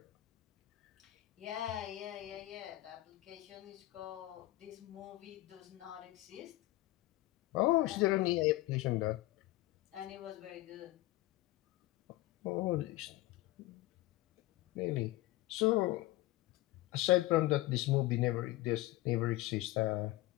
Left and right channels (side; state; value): right; quieter; 17.8 dB